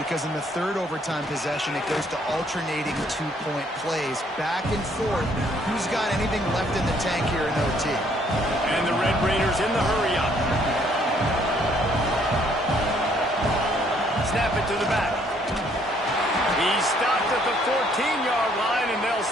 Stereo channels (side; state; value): both; normal; correlation 0.65